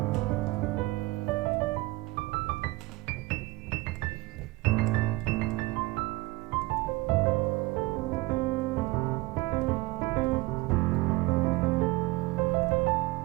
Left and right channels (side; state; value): left; quieter; 20.8 dB